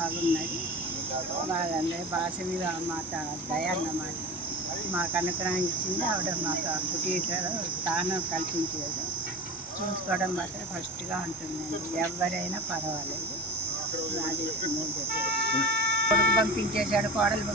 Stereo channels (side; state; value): both; normal; correlation 0.31